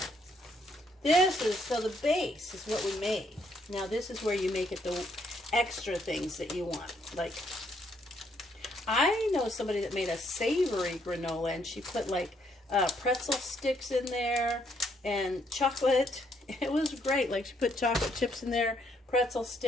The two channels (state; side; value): normal; both; correlation 0.71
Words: This is, so the base is what we made. Now this is where you make it the extra things that you want. Like, I know somebody that made a savory granola, and she put like pretzel sticks in there and chocolate. It was great. Like, she put chocolate chips in there, pretzel